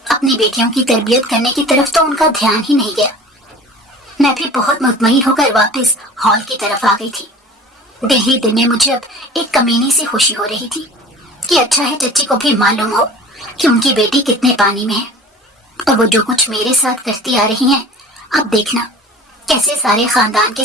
اپنی بیٹیوں کی تربیت کرنے کی طرف تو ان کا دھیان ہی نہیں گیا۔ میں بھی بہت مطمئن ہو کر واپس ہال کی طرف آ گئی تھی، دل ہی دل میں مجھے اب ایک کمینی سی خوشی ہو رہی تھی کہ اچھا ہے چچی کو بھی معلوم ہو کہ ان کی بیٹی کتنے پانی میں ہے، اور وہ جو کچھ میرے ساتھ کرتی آ رہی ہیں، اب دیکھنا کیسے سارے خاندان کے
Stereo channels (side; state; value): both; normal; correlation 0.42